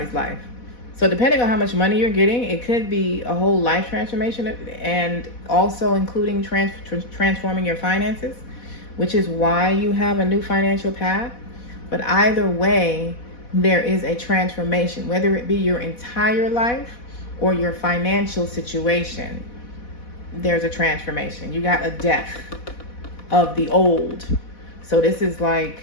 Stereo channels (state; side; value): late; right; 4.1 ms